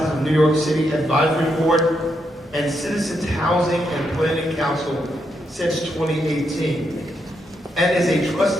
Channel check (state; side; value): normal; both; correlation 0.80